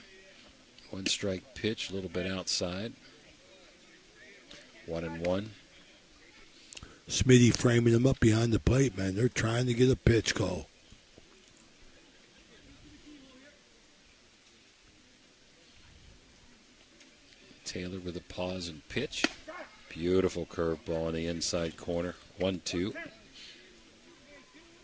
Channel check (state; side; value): identical; both; correlation 1.00